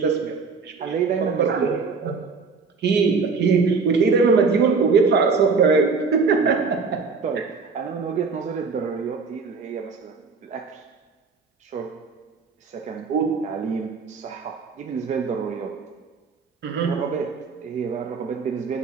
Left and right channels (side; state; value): left; quieter; 4.8 dB